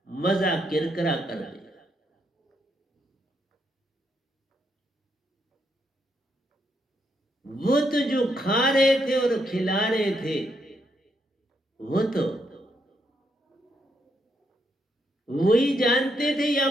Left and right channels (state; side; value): normal; both; correlation 0.78